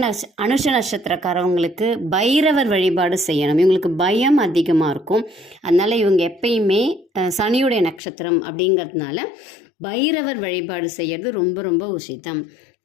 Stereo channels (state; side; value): drops out; right; at 8.0 s